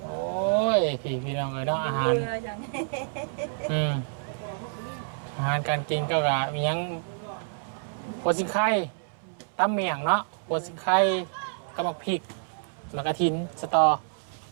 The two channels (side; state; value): left; silent; 59 dB below the other